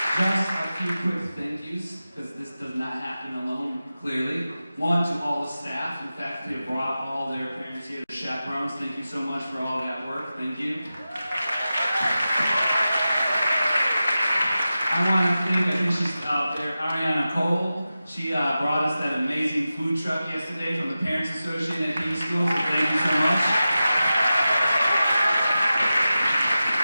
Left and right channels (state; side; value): inverted; both; correlation -0.94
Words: Just a few quick thank yous, because this does not happen alone, clearly. One, to all the staff and faculty have brought all their parents here, the chaperones. Thank you so much for all that work. Thank you. I want to thank, I think she's out there, Ariana Cole. She brought us that amazing food truck yesterday from the Parents Association at King School, so thank you so much.